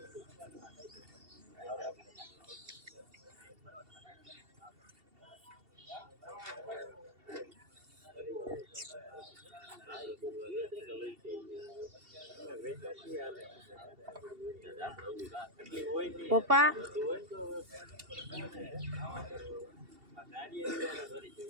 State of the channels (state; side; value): late; left; 2.7 ms